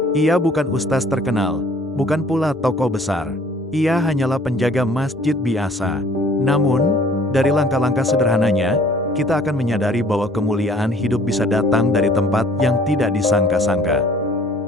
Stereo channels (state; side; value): normal; both; correlation 0.54